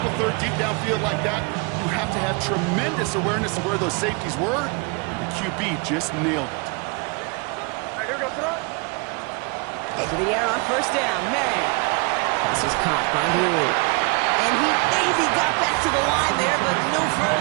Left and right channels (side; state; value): left; quieter; 31.0 dB